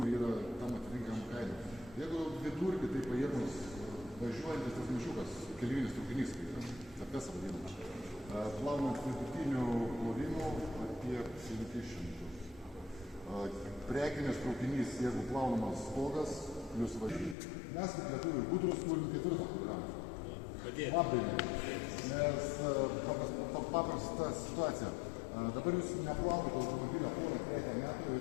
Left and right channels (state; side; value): drops out; right; at 17.4 s